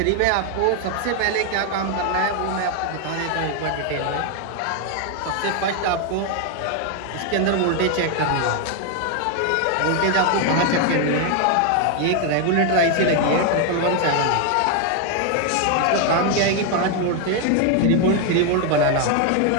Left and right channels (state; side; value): different; both; correlation 0.01